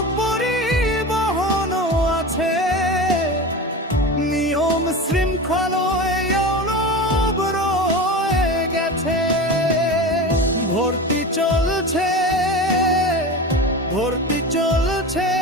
পরিবহনও আছে, নিয়ম শৃঙ্খলায়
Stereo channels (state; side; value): normal; both; correlation 0.28